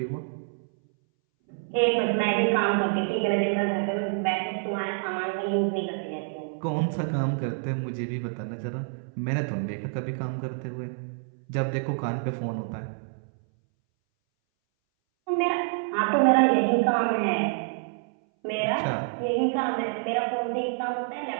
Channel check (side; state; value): left; silent; 60 dB below the other